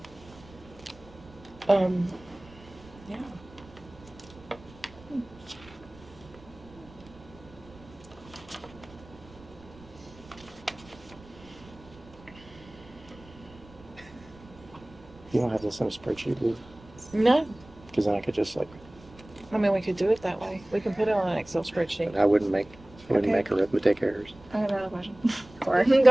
You don't have this in a spreadsheet, do you? No, Because then I could just like, I mean we could do it that way. We can put it on an Excel spreadsheet. I wouldn't make Okay. arithmetic errors. I have another question. Go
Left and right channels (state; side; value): noise; right; rumble, 22 dB below the sound